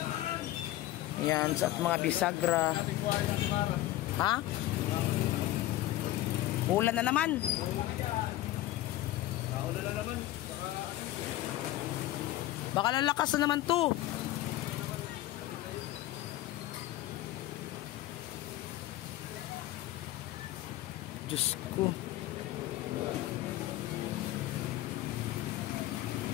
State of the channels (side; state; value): right; quieter; 15.6 dB